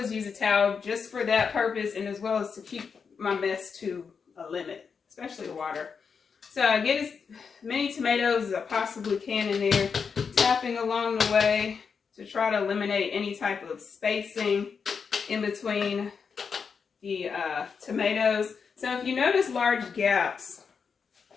use a towel just for that purpose, and as well as to keep my mess to a limit, especially water. So I get as many tomatoes as I possibly can in there, tapping along the way to try to eliminate any type of spacing in between the tomatoes. So if you notice large gaps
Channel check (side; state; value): right; quieter; 5.9 dB